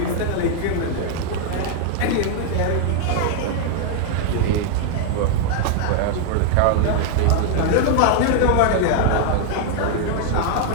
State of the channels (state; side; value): different; both; correlation 0.00